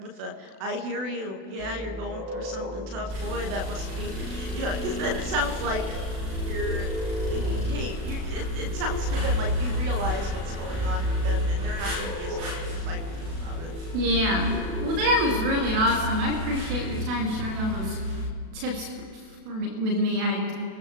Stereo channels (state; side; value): late; left; 36 ms